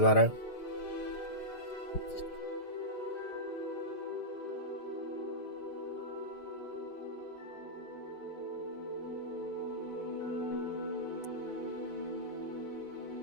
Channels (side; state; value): right; late; 6.5 ms